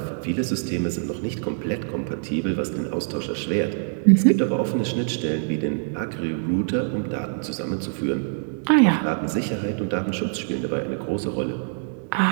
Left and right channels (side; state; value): left; silent; digital silence